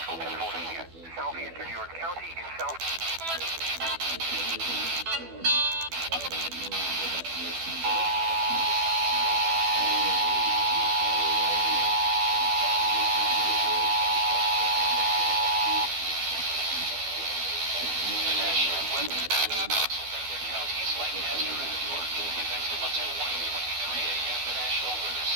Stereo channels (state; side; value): late; left; 12 ms